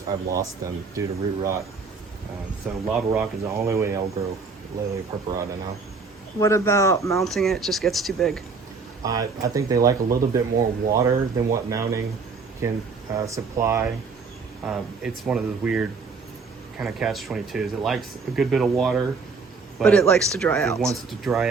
I've lost them due to root rot. So lava rock is the only way I'll grow Layla Purple now. What about mounting it just gets too big? I think they like a little bit more water than what mounting can supply. It's one of those weird kind of catch-22s. It likes a good bit of water, But it likes to dry it out. wants to dry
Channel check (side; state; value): left; quieter; 4.7 dB